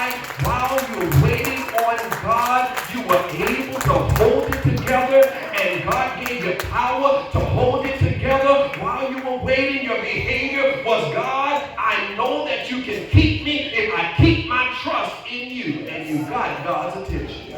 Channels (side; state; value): both; identical; correlation 1.00